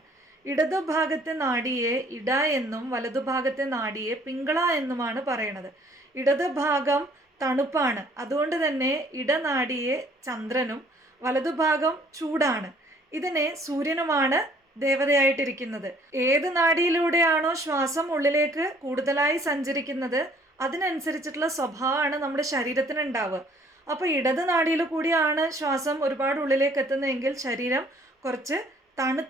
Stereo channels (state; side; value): normal; both; correlation 0.59